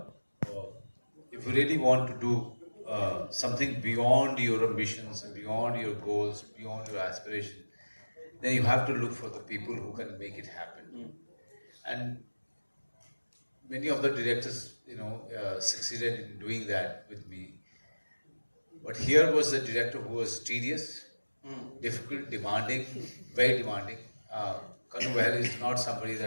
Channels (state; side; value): inverted; both; correlation -1.00